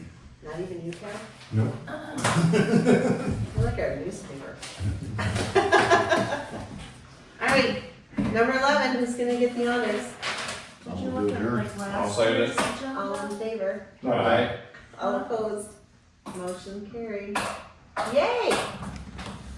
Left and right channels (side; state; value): both; identical; correlation 1.00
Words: not even you, Carol? Nope. Look at our newspaper. second it. All in favor? Aye. All opposed? Motion carried. Yay!